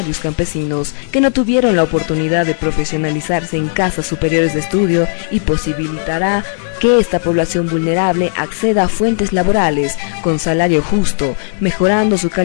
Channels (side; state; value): right; silent; digital silence